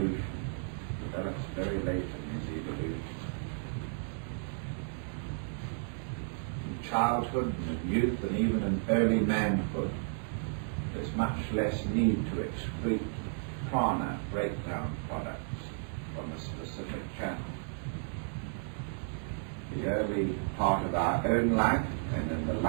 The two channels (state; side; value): silent; left; 56 dB below the other